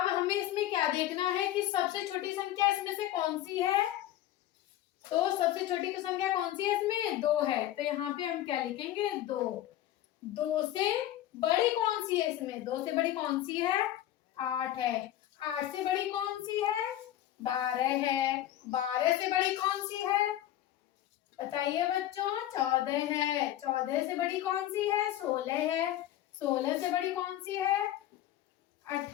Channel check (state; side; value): quieter; right; 13.1 dB